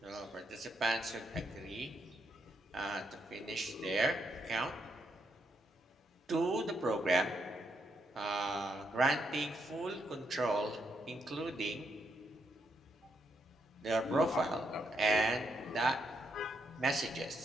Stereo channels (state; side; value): normal; both; correlation 0.79